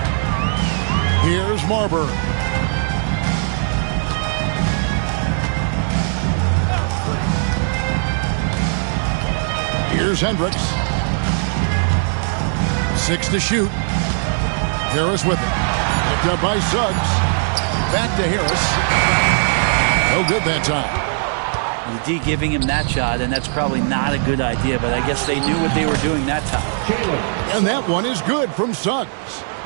Here's Marburg. Here's Hendricks. 6 to shoot. Harris with it. Picked up by Suggs. Back to Harris. No good that time. The D giving him that shot, and that's probably not a good idea, but I guess they knew what they were doing that time. And that one is good from Suggs.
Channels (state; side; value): silent; left; digital silence